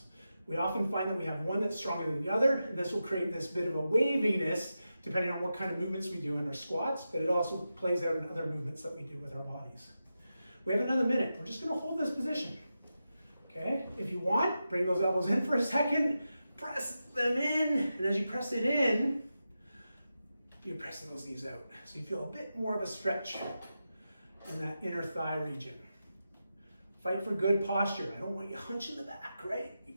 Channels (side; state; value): both; inverted; correlation -0.90